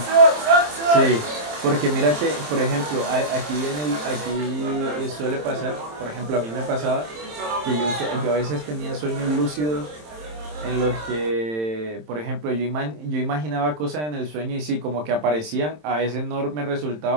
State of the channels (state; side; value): late; left; 27 ms